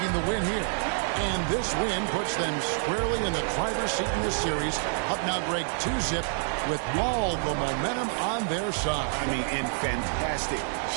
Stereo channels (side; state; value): left; silent; 60 dB below the other